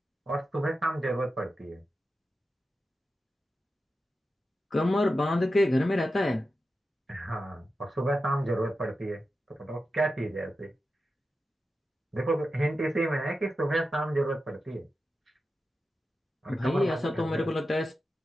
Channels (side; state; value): both; normal; correlation 0.91